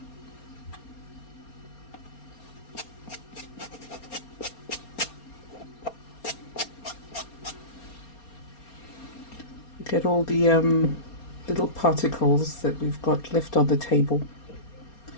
Look at all the little particles that we've got left on the table.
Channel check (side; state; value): right; late; 4.3 ms